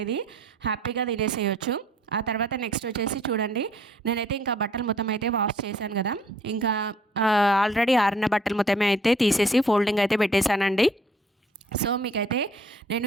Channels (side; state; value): both; normal; correlation 0.58